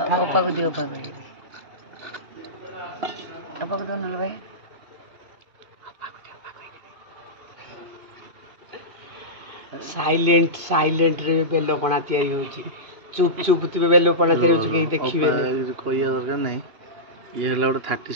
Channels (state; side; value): late; left; 2.5 ms